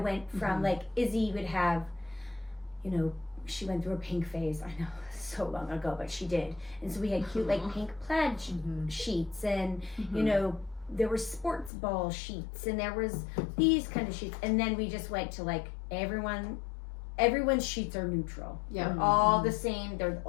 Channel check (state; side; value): drops out; right; at 11.7 s